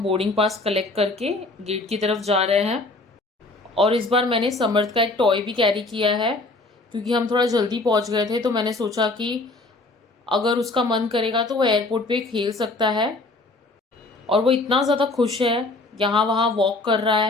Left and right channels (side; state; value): right; quieter; 3.1 dB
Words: बोर्डिंग पास कलेक्ट करके गेट की तरफ जा रहे हैं। और इस बार मैंने समर्थ का एक टॉय भी कैरी किया है, क्योंकि हम थोड़ा जल्दी पहुंच गए थे, तो मैंने सोचा कि अगर उसका मन करेगा तो वो एयरपोर्ट पे खेल सकता है। और वो इतना ज़्यादा खुश है, यहाँ वहाँ वॉक कर रहा